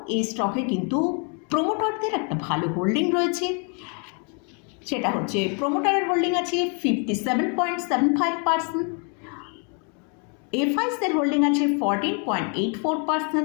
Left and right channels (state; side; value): quieter; right; 37.4 dB